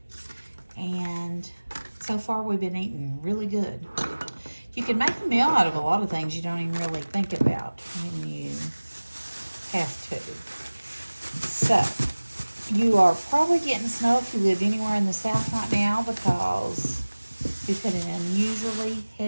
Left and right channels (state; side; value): inverted; both; correlation -1.00